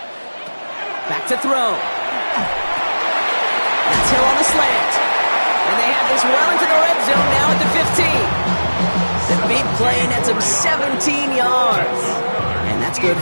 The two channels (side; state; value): both; inverted; correlation -1.00